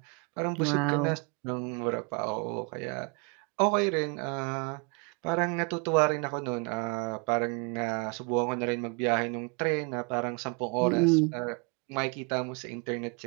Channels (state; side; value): quieter; left; 34.5 dB